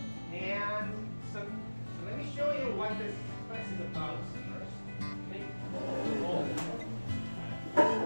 And so let me show you what this class is about first.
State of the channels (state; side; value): inverted; both; correlation -1.00